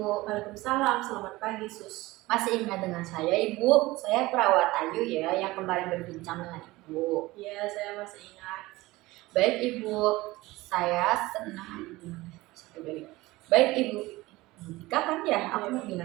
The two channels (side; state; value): left; quieter; 19.7 dB